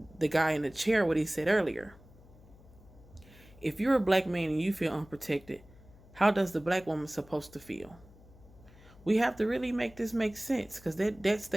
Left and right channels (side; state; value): left; noise; hum, 23 dB below the sound